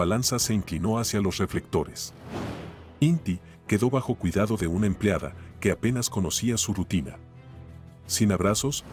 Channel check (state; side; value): identical; both; correlation 1.00